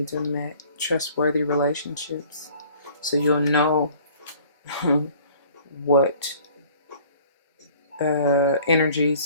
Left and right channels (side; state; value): both; inverted; correlation -0.52